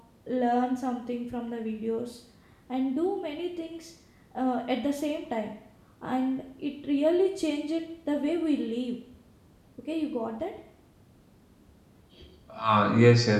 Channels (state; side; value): identical; both; correlation 1.00